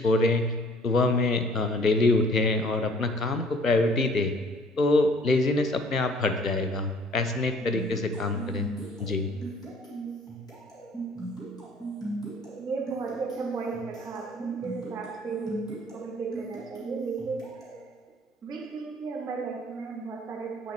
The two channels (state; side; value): normal; both; correlation 0.55